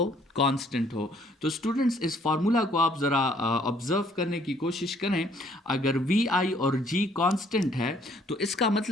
कांस्टेंट हो। तो स्टूडेंट्स, इस फार्मूला को आप ज़रा ऑब्जर्व करने की कोशिश करें। अगर वी आई और जी कांस्टेंट है तो इसका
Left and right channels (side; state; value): both; normal; correlation 0.63